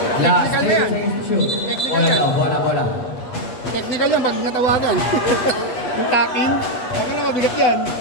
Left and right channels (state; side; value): late; right; 8.4 ms